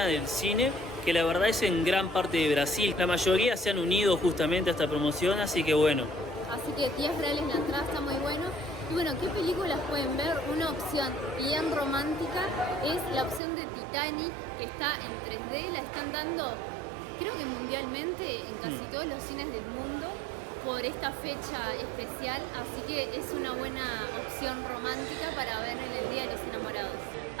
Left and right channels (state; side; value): drops out; left; at 13.4 s